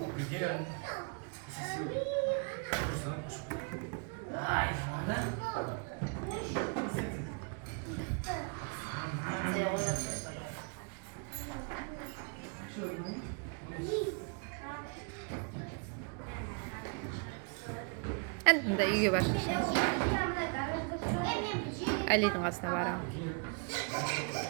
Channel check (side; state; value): left; quieter; 37.5 dB